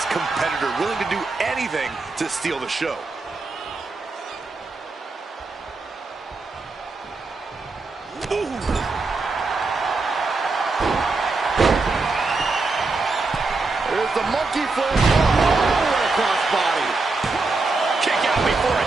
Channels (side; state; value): left; quieter; 3.7 dB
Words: competitor, willing to do anything to steal the show. Ooh. There's the monkey flip. Oh, crossbody. Kick out before a